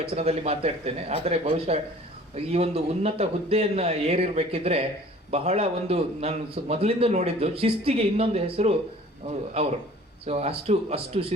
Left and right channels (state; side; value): normal; both; correlation 0.49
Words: ಮಾತಾಡ್ತೇನೆ. ಆದರೆ ಬಹುಶಃ ಈ ಒಂದು ಉನ್ನತ ಹುದ್ದೆಯನ್ನು ಏರಿರಬೇಕಿದ್ರೆ ಬಹಳ ಒಂದು ನಾನು ಮೊದಲಿಂದ ನೋಡಿದ್ದು ಶಿಸ್ತಿಗೆ ಇನ್ನೊಂದು ಹೆಸರು ಅವರು. ಸೊ ಅಷ್ಟು